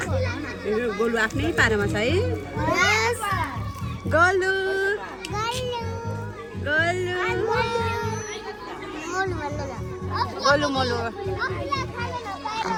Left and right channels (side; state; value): both; identical; correlation 1.00